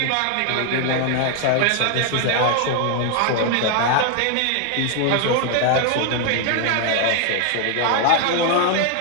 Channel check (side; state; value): both; different; correlation 0.00